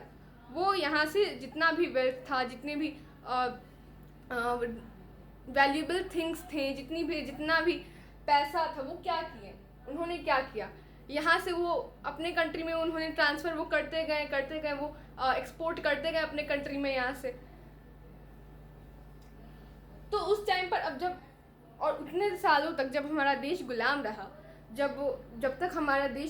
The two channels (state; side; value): identical; both; correlation 1.00